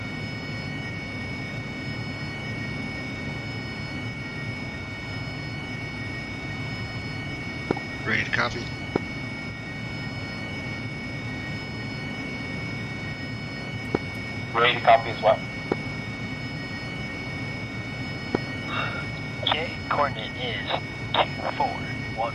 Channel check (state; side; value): identical; both; correlation 1.00